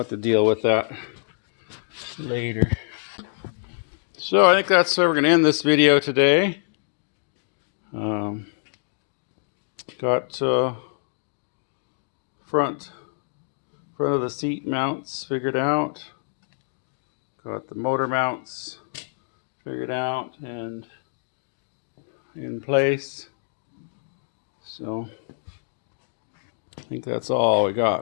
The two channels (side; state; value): right; silent; digital silence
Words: have to deal with that later. So I think that's where we're going to end this video today. Got front Front of the seat mounts figured out. Got the motor mounts figured out and in place. So I think that's all we